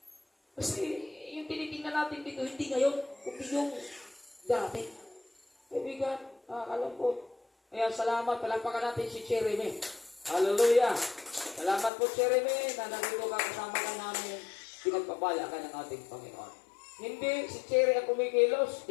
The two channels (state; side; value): drops out; right; at 11.9 s